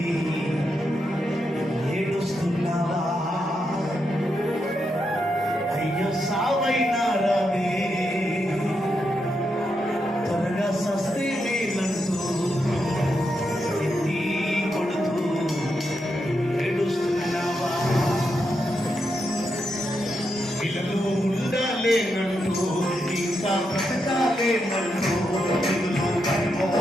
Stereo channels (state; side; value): normal; both; correlation 0.84